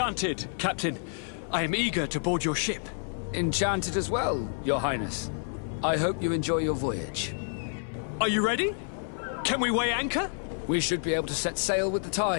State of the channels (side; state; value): right; silent; 59 dB below the other